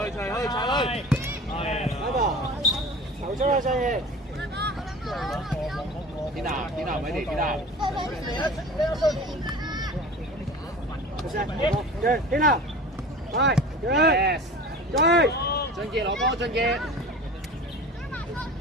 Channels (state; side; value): normal; both; correlation 0.38